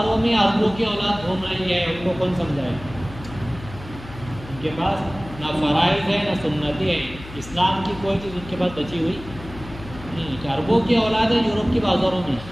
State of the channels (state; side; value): noise; left; hum, 15 dB below the sound